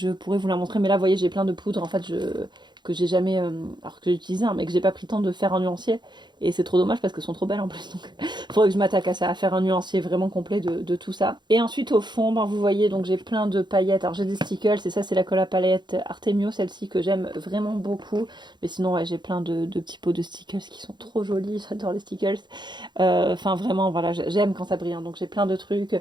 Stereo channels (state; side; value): late; left; 0.21 ms